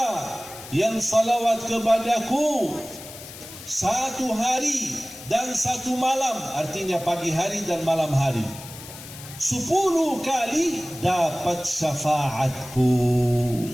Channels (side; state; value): left; noise; hiss, 15 dB below the sound